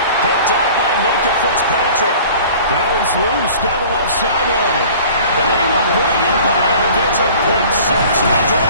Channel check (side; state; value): both; inverted; correlation -0.46